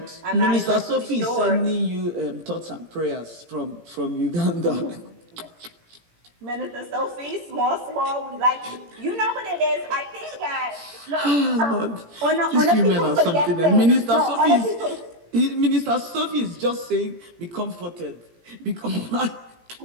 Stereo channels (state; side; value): late; left; 17 ms